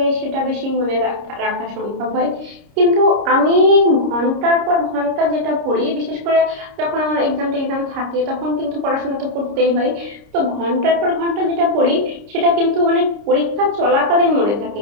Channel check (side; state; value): left; late; 29 ms